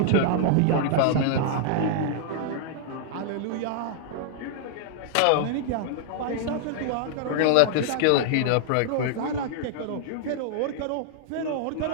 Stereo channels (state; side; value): different; both; correlation -0.01